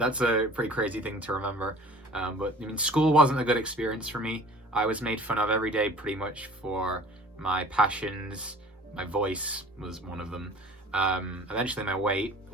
a pretty crazy thing to remember. But I mean, school wasn't a good experience for me. I was made fun of every day pretty much for my passions. My voice was one of them. Eventually my weight,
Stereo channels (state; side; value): normal; both; correlation 0.46